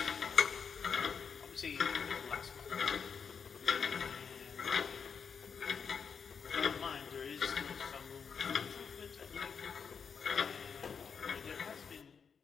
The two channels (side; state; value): right; quieter; 6.3 dB